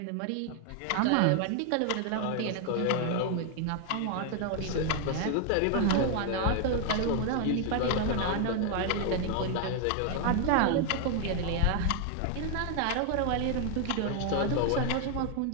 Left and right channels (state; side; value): different; both; correlation 0.00